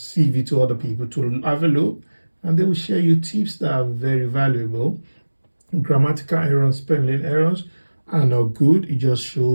to other people to have a look, and they will share you tips that are very valuable. Grammatical errors, spelling errors are not good. It just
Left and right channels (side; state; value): both; inverted; correlation -1.00